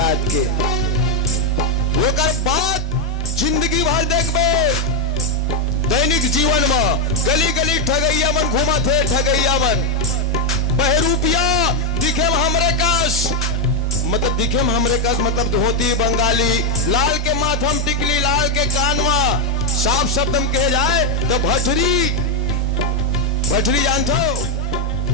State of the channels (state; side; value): normal; both; correlation 0.04